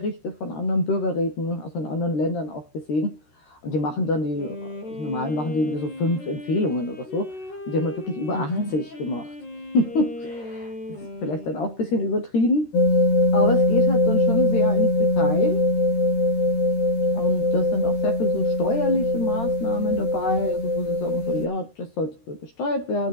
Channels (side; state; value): right; late; 13 ms